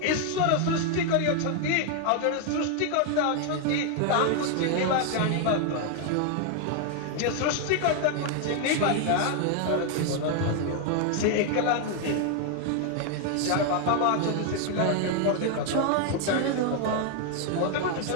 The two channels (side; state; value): both; different; correlation 0.00